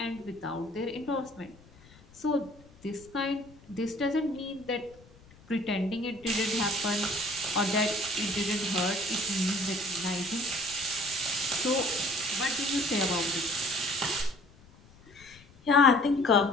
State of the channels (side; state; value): left; noise; rumble, 25 dB below the sound